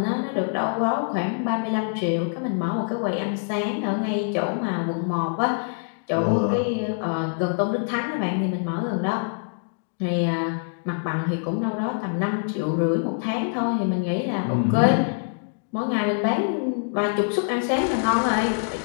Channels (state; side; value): silent; right; digital silence